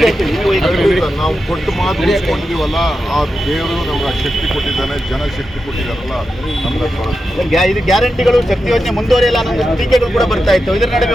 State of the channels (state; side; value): normal; both; correlation 0.89